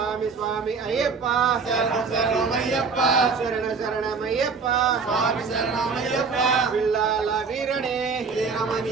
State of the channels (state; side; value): quieter; left; 5.0 dB